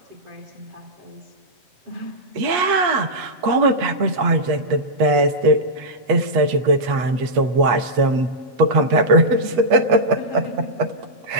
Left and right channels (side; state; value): left; late; 8.3 ms